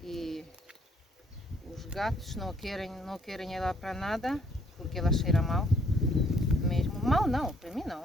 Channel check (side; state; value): both; normal; correlation 0.65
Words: e os gatos não querem ela para nada, porque ela cheira mal mesmo. Mal não, para mim